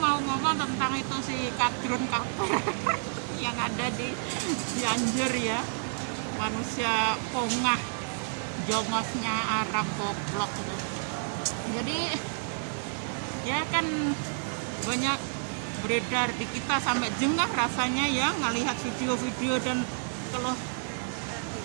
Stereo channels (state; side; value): silent; left; 57 dB below the other